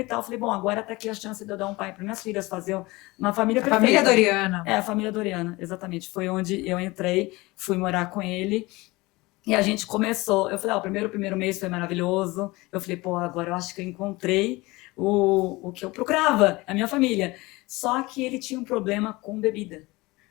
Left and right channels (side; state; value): right; quieter; 22.0 dB